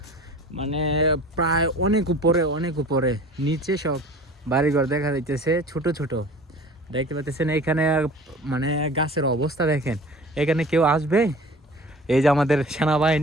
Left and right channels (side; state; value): both; normal; correlation 0.43